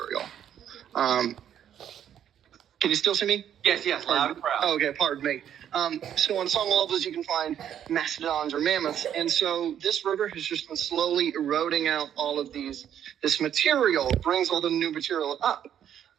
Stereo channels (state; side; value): quieter; left; 9.8 dB